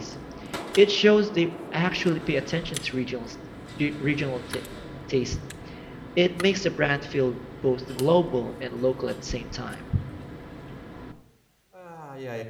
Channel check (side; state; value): both; identical; correlation 1.00